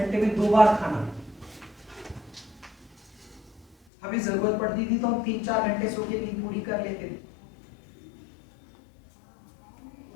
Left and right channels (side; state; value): right; drops out; at 3.8 s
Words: में 2 बार खाना। हमें जरूरत पड़ती थी तो हम 3-4 घंटे सो के नींद पूरी कर लेते थे।